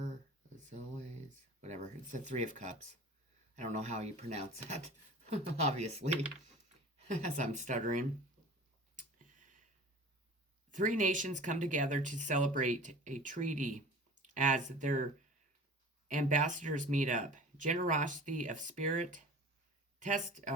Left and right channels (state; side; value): normal; both; correlation 0.41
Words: zoes, whatever. It's the three of cups. I don't know how you pronounce that, obviously, as I'm stuttering. Three nations come together to celebrate a treaty as their ambassadors meet up. Generosity of spirit